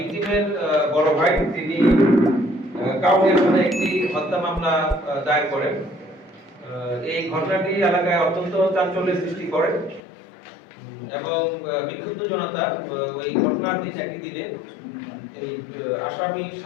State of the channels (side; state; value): right; drops out; at 10.0 s